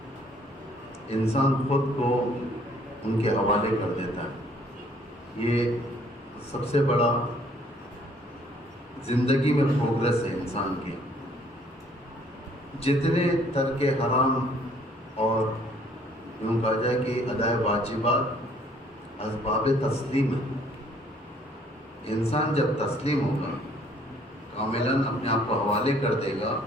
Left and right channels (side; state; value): both; normal; correlation 0.61